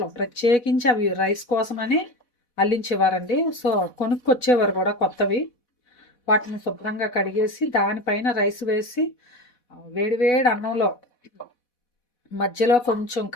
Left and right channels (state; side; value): late; right; 4.1 ms